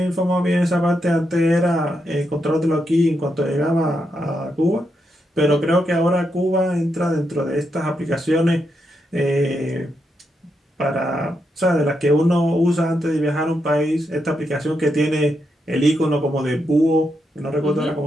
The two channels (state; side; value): normal; both; correlation 0.83